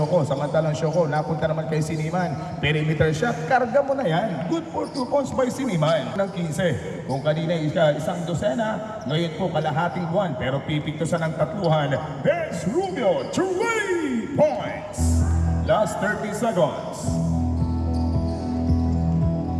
Samantalang Shoko, napunta naman kay Siniman. Perimeter shot, karga mo na yan. Good for 2 points by Siniman. Ng 15. Kung kanina isang dosena, ngayon po kalahating buwan. Pero pipiktusan ng tatluhan. Vince Rubio, 3 points. Last 30 seconds.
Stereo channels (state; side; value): identical; both; correlation 1.00